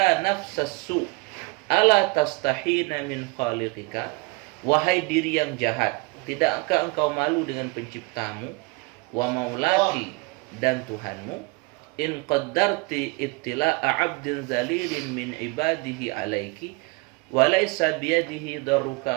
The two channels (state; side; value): quieter; left; 27.1 dB